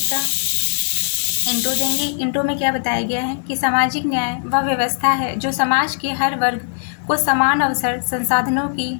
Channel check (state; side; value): silent; right; digital silence